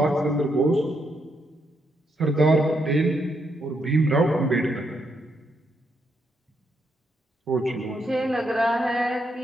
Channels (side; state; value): both; normal; correlation 0.79